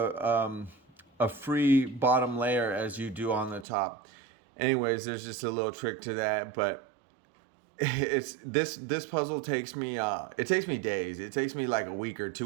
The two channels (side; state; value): left; drops out; at 3.7 s